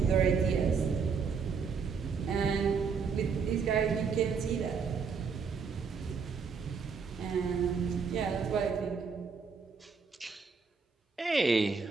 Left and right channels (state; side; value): quieter; left; 5.6 dB